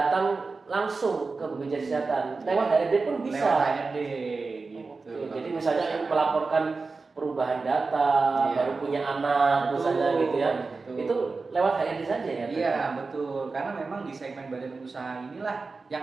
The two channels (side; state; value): left; quieter; 4.1 dB